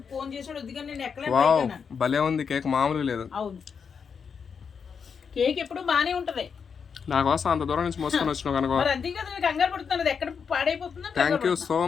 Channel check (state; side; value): quieter; right; 6.3 dB